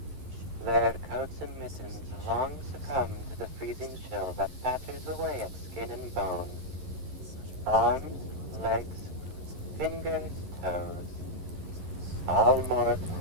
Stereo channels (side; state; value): left; late; 11 ms